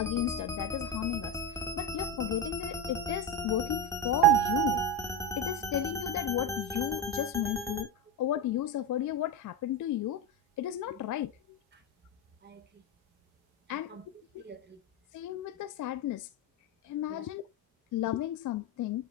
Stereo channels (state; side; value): normal; both; correlation 0.14